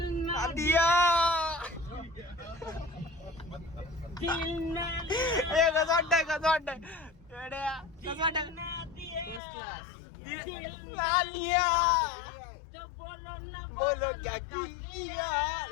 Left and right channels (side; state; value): right; drops out; at 9.4 s